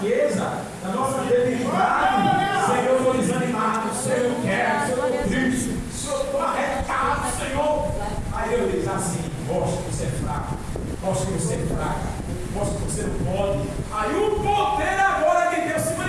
na nossa debilidade, Senhor, eu estou desanimado, Senhor, eu quero, Senhor, eu estou triste, Senhor, eu estou arretado, Senhor. Aí eu diz assim: mostra que você é fraco, mostra que você é fraca, mostra que você não pode. Aí o poder agora de Deus se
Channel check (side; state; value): both; identical; correlation 1.00